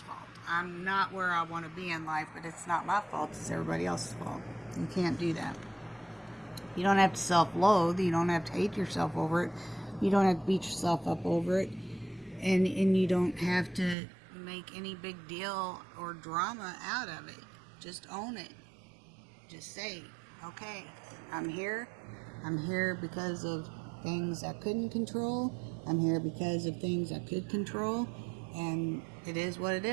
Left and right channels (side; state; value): left; drops out; at 14.0 s